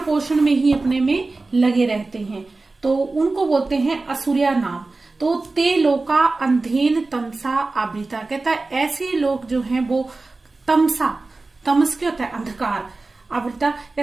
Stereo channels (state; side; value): quieter; left; 3.5 dB